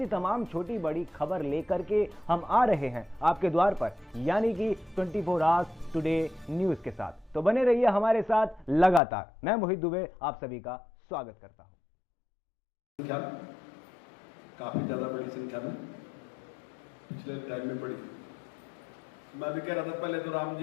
तमाम छोटी बड़ी खबर लेकर के हम आ रहे हैं आपके द्वार पर, यानी कि 24 आवर्स टुडे न्यूज के साथ। तो बने रहिए हमारे साथ लगातार। मैं मोहित दुबे आप सभी का स्वागत करता हूं। काफी ज्यादा बड़ी संख्या में पिछले टाइम में बढ़ी। मैं भी कह रहा था पहले तो राम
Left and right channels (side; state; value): right; drops out; at 9.0 s